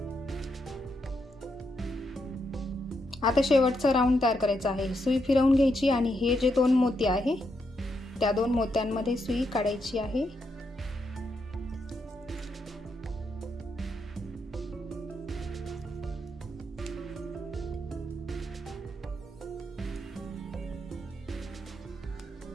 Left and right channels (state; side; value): normal; both; correlation 0.81